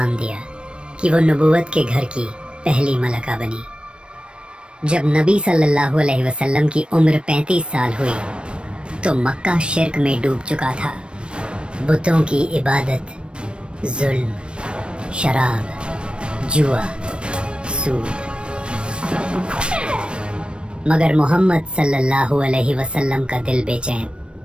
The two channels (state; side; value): late; left; 0.057 ms